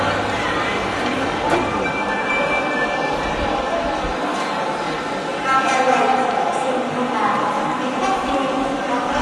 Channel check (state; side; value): identical; both; correlation 1.00